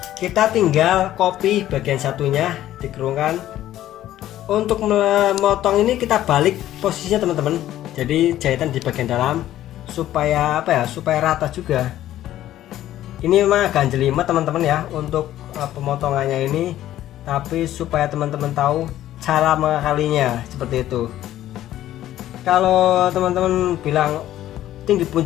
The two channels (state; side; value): quieter; right; 13.2 dB